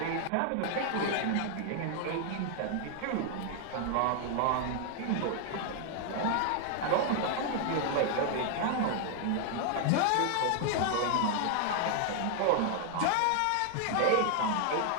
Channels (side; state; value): both; different; correlation 0.00